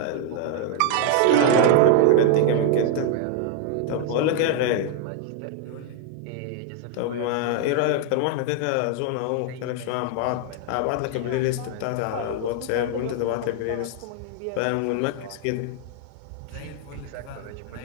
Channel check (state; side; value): different; both; correlation 0.00